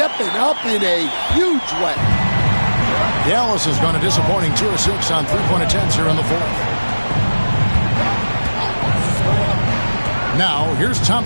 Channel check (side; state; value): both; inverted; correlation -1.00